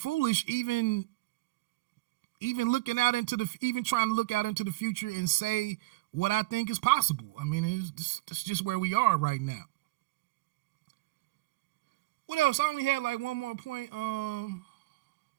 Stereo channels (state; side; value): quieter; left; 21.0 dB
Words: even looking out trying to look out into the future and say what I think is possible. I mean, it's just where we are right now. What else? I only had like one more point. Where